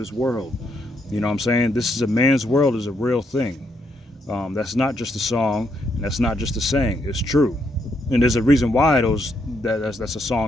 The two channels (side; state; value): both; normal; correlation 0.76